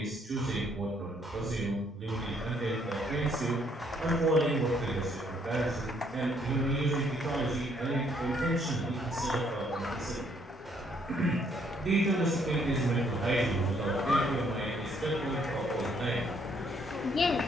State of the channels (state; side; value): normal; both; correlation 0.68